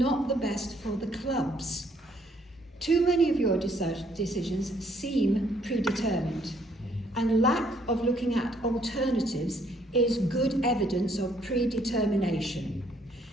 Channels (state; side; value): normal; both; correlation 0.67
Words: the best for the clubs. Too many of your decisions seem predetermined, and lack of looking at alternatives is good evidence of predetermination.